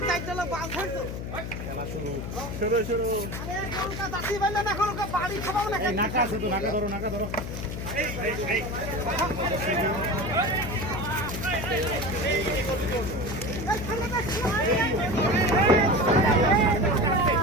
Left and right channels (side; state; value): left; noise; hum, 6 dB below the sound